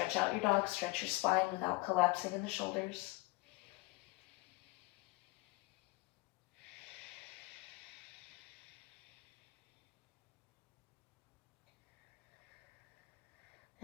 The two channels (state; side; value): quieter; right; 22.9 dB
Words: out your dog. Stretch your spine without collapsing in the shoulders.